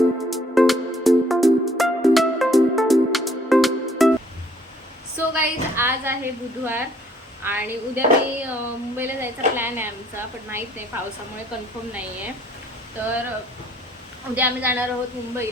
सो गाईज आज आहे बुधवार आणि उद्या मी मुंबईला जायचा प्लॅन आहे आमचा, पण माहीत नाही पावसामुळे कन्फर्म नाही आहे. तर उद्या आम्ही जाणार आहोत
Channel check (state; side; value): normal; both; correlation 0.62